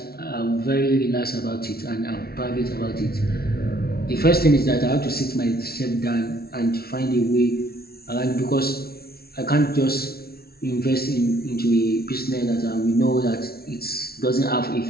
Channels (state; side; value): late; right; 0.44 ms